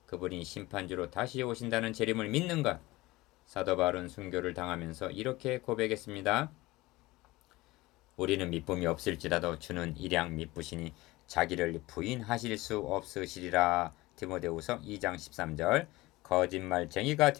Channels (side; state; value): right; quieter; 20.0 dB